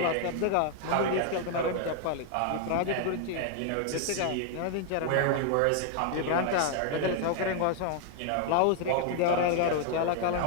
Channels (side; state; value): both; different; correlation 0.00